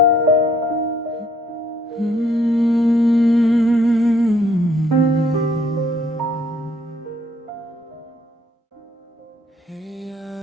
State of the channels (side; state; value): both; normal; correlation 0.64